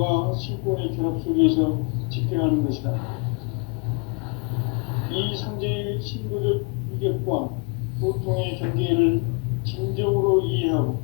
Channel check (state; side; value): quieter; right; 33.7 dB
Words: 신권의 결합 속에서 집행하는 것이다. 이 상제의 신도적 위격과 보통의 경계를 진정으로 이해하고